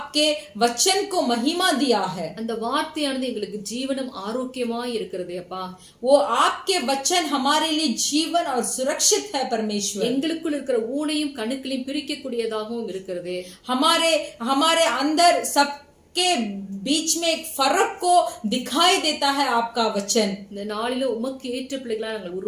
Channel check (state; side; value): identical; both; correlation 1.00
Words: वचन को महिमा दिया है। அந்த வார்த்தையானது எங்களுக்கு ஜீவனும் ஆரோக்கியமாய் இருக்கிறது அப்பா. वो आपके वचन हमारे लिए जीवन और सुरक्षित है परमेश्वर। எங்களுக்குள் இருக்கிற ஊனையும் கணுக்களையும் பிரிக்கக்கூடியதாகவும் இருக்கிறது. हमारे अंदर सब के बीच में एक फर्क को दिखाई देता है आपका वचन। இந்த நாளில உமக்கு ஏற்ற பிள்ளைகளா நாங்கள்